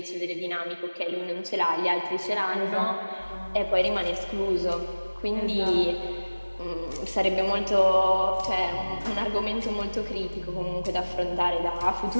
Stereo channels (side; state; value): both; inverted; correlation -1.00